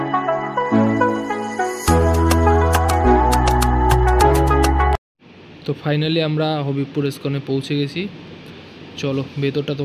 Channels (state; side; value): identical; both; correlation 1.00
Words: তো ফাইনালি আমরা হবিবপুর ইস্কনে পৌঁছে গেছি। চলো ভেতরটা